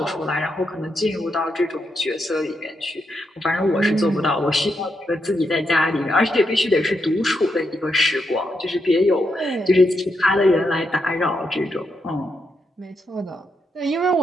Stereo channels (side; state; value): both; normal; correlation 0.82